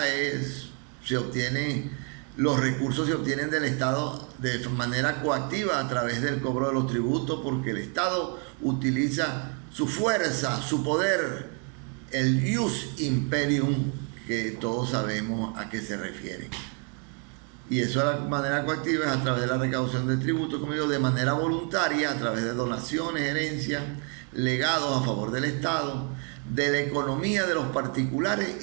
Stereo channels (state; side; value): quieter; left; 39.4 dB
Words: los recursos se obtienen del Estado de manera coactiva a través del cobro de los tributos, porque el Estado utiliza su fuerza, su poder, el ius imperium, que todos sabemos a qué se refiere. Y eso de la manera coactiva es a través de la recaudación de tributos, como digo, de manera voluntaria, a través de donaciones, herencias, legados a favor del Estado, de la economía de los particulares